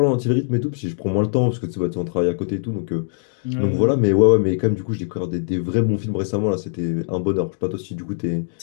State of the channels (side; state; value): right; silent; digital silence